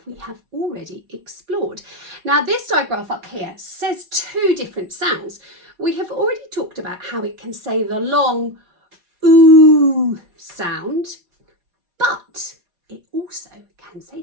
we have already explored. Now, this digraph up here says two different sounds. We have already talked about how it can say the long ooh sound, but it also can say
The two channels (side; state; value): left; late; 4.6 ms